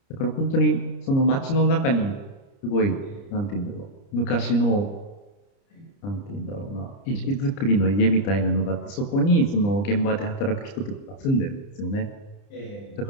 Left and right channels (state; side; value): late; right; 30 ms